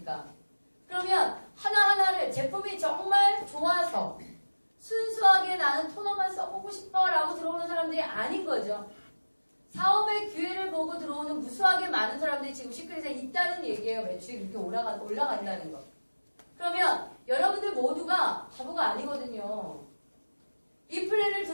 그러면 하나하나를 제품이 정말 좋아서 순수하게 나는 토너만 써보고 싶어 라고 들어오는 사람들이 아닌 거죠. 사업의 기회를 보고 들어오는 무수하게 많은 사람들이 지금 시크릿에 있다는 얘기예요. 매출이 그렇게 올라간다는 거. 그러면 여러분들 모두가 바보가 아니거든요. 이 플랜을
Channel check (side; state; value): both; inverted; correlation -1.00